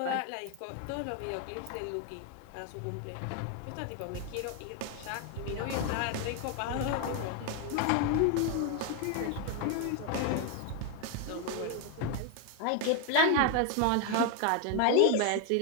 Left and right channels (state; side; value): different; both; correlation 0.01